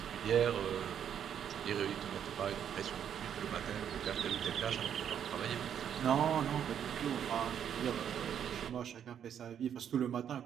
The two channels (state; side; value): quieter; left; 9.0 dB